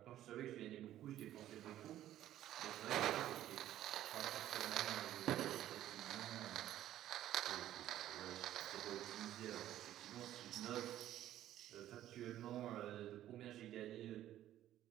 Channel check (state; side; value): quieter; left; 12.7 dB